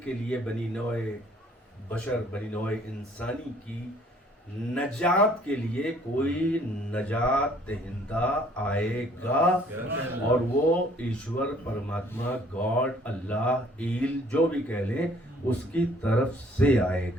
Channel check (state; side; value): normal; both; correlation 0.59